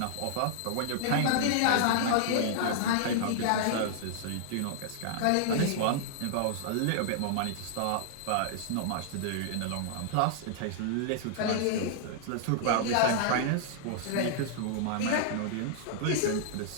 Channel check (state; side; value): different; both; correlation -0.01